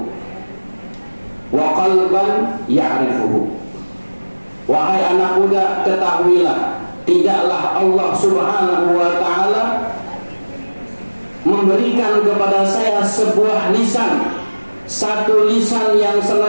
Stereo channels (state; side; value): inverted; both; correlation -1.00